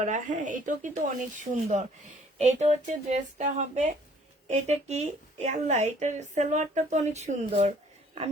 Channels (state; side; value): normal; both; correlation 0.58